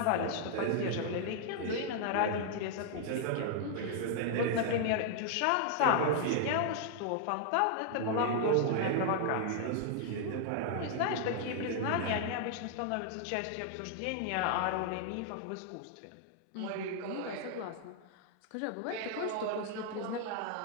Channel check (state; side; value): different; both; correlation 0.00